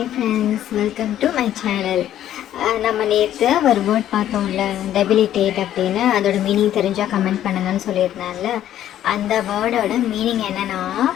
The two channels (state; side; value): quieter; right; 11.7 dB